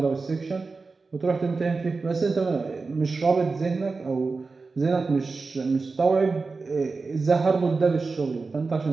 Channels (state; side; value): quieter; left; 4.1 dB